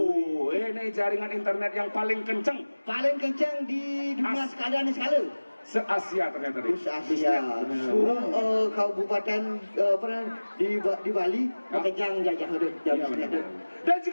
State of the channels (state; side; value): inverted; both; correlation -1.00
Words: ini jaringan internet yang paling kenceng Paling kencang di dunia sekalian sekali. se-Asia ternyata. Asia. Seluruh kabupaten di Bali kencang jajah Iya, dan